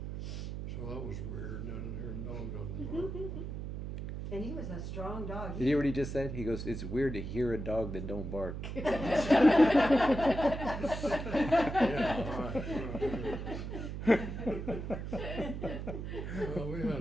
So that was weird. And here a dog doesn't bark. And he was a strong dog. Did you hear what he just said? He goes, "It's weird to hear a dog that don't bark." Yeah, right. Well, we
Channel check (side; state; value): right; noise; hum, 6 dB below the sound